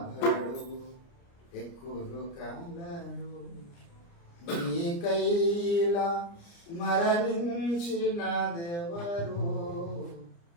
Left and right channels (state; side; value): late; right; 29 ms